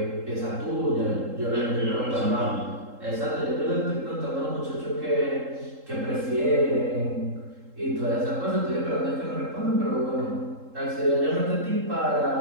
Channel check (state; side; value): late; left; 3.7 ms